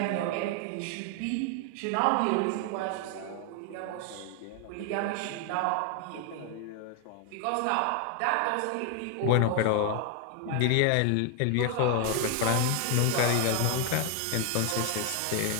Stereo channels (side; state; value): both; different; correlation 0.00